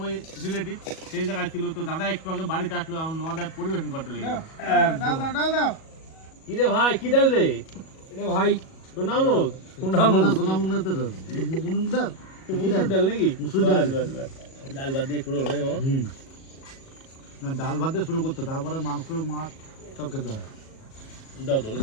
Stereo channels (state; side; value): late; right; 37 ms